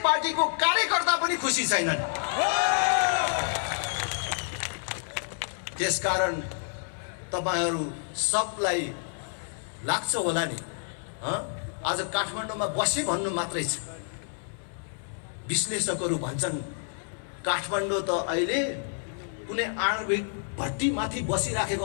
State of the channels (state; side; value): silent; right; 59 dB below the other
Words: पार्टीको कार्यकर्ता पनि खुसी छैनन्। त्यसकारण तपाईहरू सबलाई लाग्छ होला नि, आज काठमाडौँमा बसे भन्नु मात्रै छ। विश्लेषकहरू भन्छन् काठमाडौँ त अहिले कुनै आणविक भट्टी माथि बसिराखेको